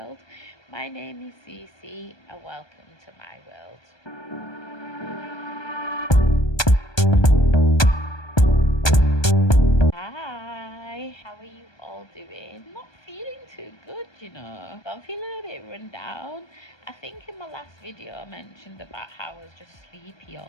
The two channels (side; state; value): right; late; 1.2 ms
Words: My name is Cece, and welcome to my world. Hi, how are you all doing? Not feeling too good, I'm feeling a bit run down. I think in my last video I mentioned about how I was just sleepy